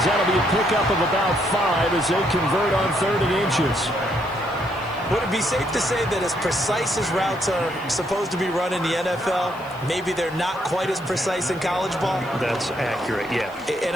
that'll be a pickup of about 5 as they convert on 3rd and inches. Would it be safe to say that as precise as routes are supposed to be run in the NFL, maybe they're not quite as precise in college ball? That's accurate, yeah. And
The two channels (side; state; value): left; noise; hiss, 26 dB below the sound